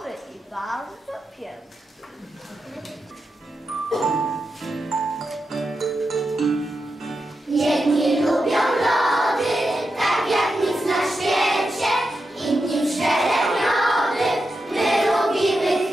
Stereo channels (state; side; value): normal; both; correlation 0.88